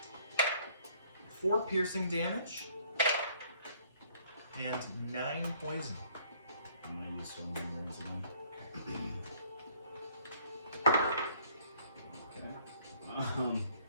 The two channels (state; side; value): inverted; both; correlation -0.60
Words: 4 piercing damage and 9 poison. I'm gonna use some words again.